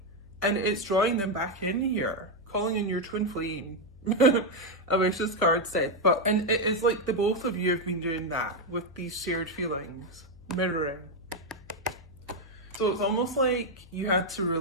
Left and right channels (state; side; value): noise; left; hum, 22 dB below the sound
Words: and it's drawing them back in here, calling in your twin flame. I wish this card said, and it's like the both of you have been doing that with these shared feelings, mirroring. So it's almost like you had to